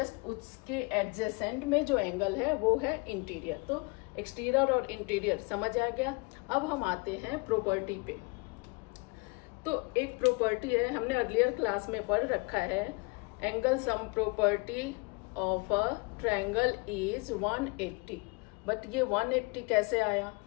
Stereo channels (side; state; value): right; quieter; 29.3 dB